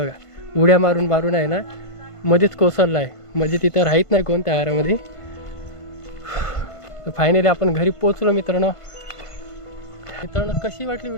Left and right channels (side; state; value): right; late; 1.5 ms